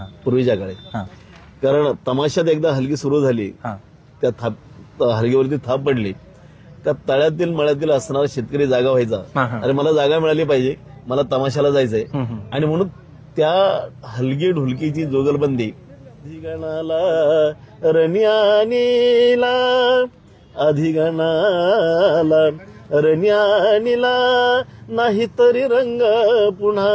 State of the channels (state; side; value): identical; both; correlation 1.00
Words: पूर्वीच्या काळी. कारण तमाशात एकदा हलगी सुरू झाली, त्या हलगीवरती थाप पडली, त्या तळ्यातील मळ्यातील असणारा शेतकरी जागा व्हायचा. अरे मला जागा मिळाली पाहिजे, मला तमाशाला जायचंय. आणि म्हणून त्या हलगी ढोलकीची जोगलबंदी अधिगणाला रण्यानीला अधिगणाला रण्यानीला नाही तरी रंग